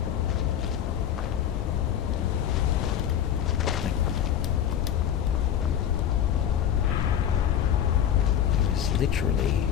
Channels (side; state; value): right; quieter; 9.7 dB